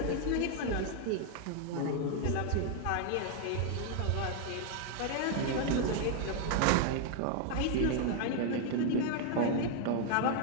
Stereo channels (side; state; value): both; different; correlation 0.00